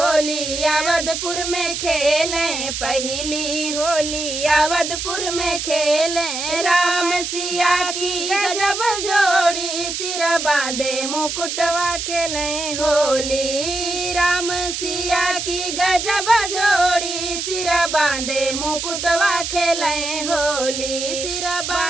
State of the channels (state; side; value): noise; right; hiss, 4 dB below the sound